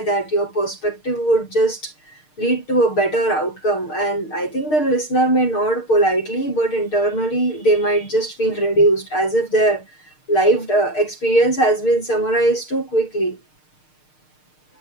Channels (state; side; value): late; right; 6.6 ms